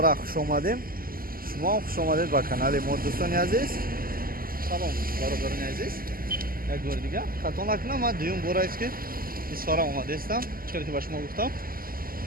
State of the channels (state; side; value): late; left; 0.42 ms